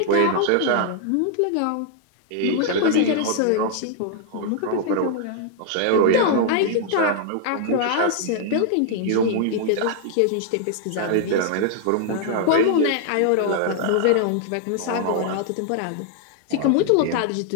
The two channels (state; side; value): different; both; correlation -0.01